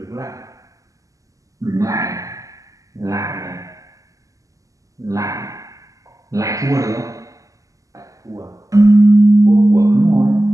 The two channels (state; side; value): late; left; 0.16 ms